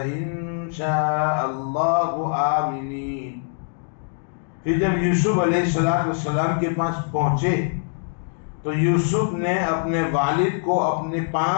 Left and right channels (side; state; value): right; silent; digital silence